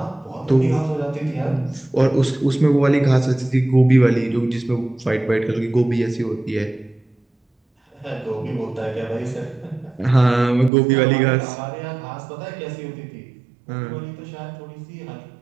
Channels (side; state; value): left; drops out; at 10.7 s